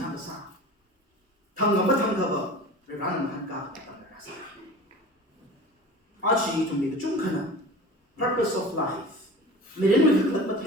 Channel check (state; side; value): normal; both; correlation 0.38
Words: xa thằng ngắm thằng cơ vợ rồi ra làm hàng cả thằng ra xa chỉ chúng mình chung khả purpose of life mình đến mình thực mà